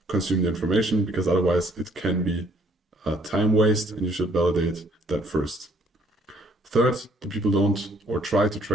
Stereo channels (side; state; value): both; normal; correlation 0.63